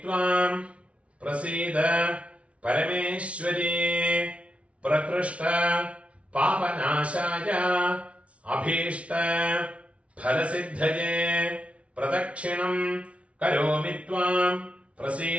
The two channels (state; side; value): late; left; 0.062 ms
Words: ത്വാം പ്രസീദ പരമേശ്വരി. പ്രകൃഷ്ട പാപനാശായ അഭീഷ്ട ഫലസിദ്ധയേ. പ്രദക്ഷിണം കരോമി ത്വാം